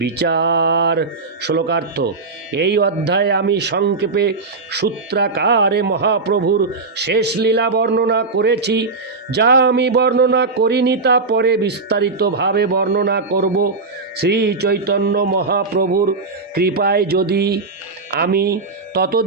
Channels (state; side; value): quieter; left; 4.0 dB